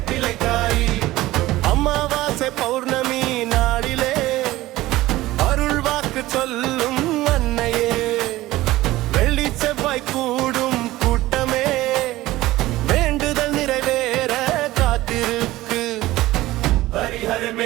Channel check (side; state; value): left; quieter; 17.2 dB